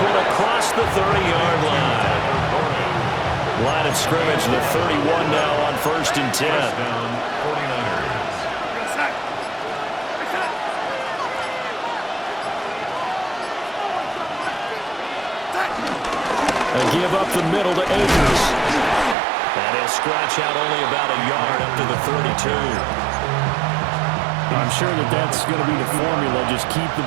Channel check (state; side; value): drops out; left; at 19.2 s